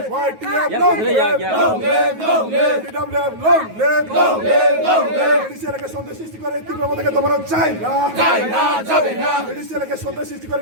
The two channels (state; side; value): late; left; 9.4 ms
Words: আমাদের সন্ত্রাস সৃষ্টি করে তীব্রতাকে দমানো চাই না, এলাকায় সন্ত্রাস সৃষ্টি করে